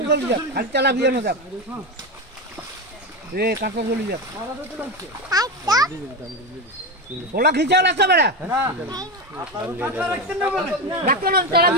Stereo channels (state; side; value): normal; both; correlation 0.16